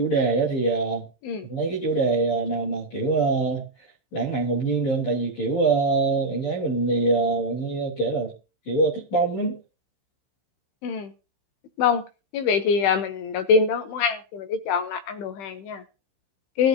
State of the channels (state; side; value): late; right; 15 ms